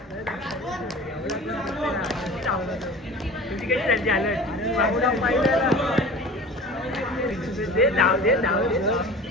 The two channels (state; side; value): normal; both; correlation 0.39